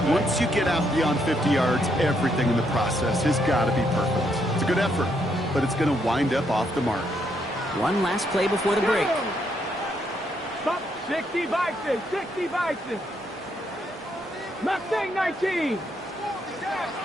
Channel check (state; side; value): normal; both; correlation 0.75